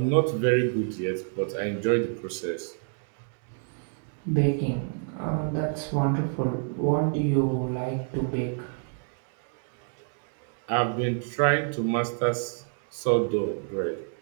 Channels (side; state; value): left; silent; 59 dB below the other